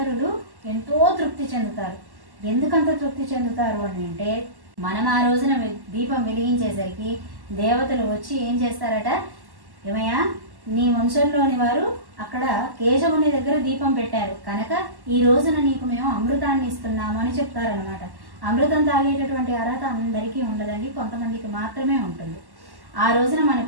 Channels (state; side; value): late; left; 1.1 ms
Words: ఎంతో తృప్తి చెందుతారు. ఎందుకంత తృప్తి చెందుతారు అని అంటే, మనం ఆ రోజున దీపం వెలిగించేసరికి దేవతలు వచ్చి ఏం చేస్తారట, ఏమయ్యా నీ వంశంలోని వారు అక్కడ కేశవుని దగ్గర దీపం పెట్టారు కనుక ఈ రోజున నీకు మేము అమృతాన్ని ఇస్తున్నాము అని చెప్తారనమాట. అమృతం తాగేటటువంటి అర్హత అందరికీ ఉండదండి, కొంతమందికి మాత్రమే ఉంటుంది. ఆ రోజున మన